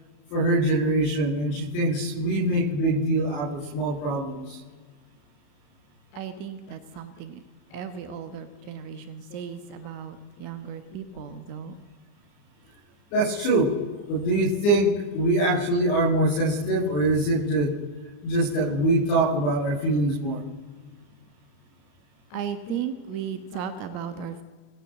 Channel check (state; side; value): late; right; 34 ms